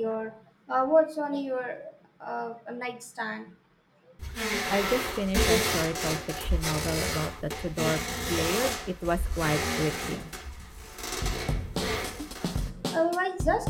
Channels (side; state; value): both; identical; correlation 1.00